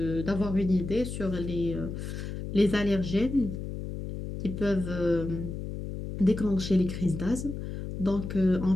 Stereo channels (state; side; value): noise; left; hum, 7 dB below the sound